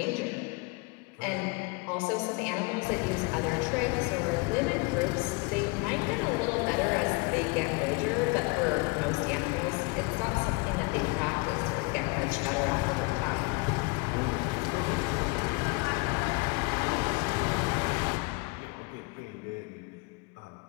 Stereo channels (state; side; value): quieter; right; 28.7 dB